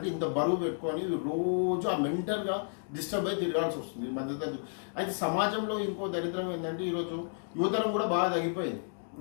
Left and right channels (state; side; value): silent; right; digital silence